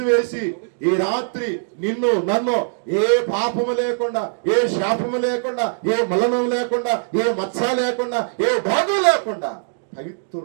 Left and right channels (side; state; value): left; silent; digital silence